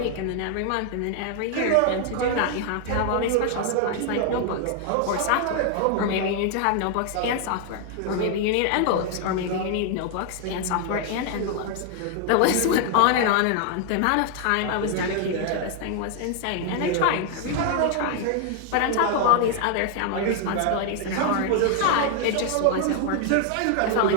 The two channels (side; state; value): both; different; correlation 0.00